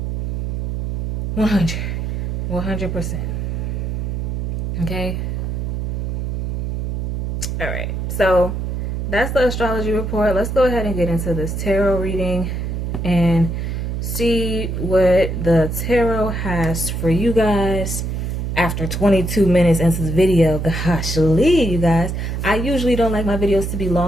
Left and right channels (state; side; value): noise; right; hum, 2 dB below the sound